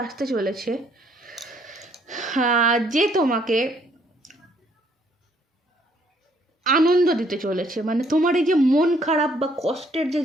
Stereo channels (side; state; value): both; normal; correlation 0.66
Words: আসতে চলেছে যে তোমাকে আনন্দ দিতে চলেছে। মানে তোমার এই যে মন খারাপ বা কষ্টের যে